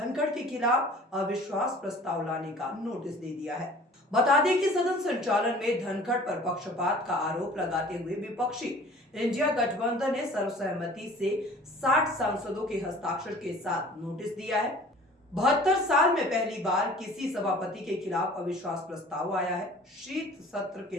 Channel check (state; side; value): normal; both; correlation 0.47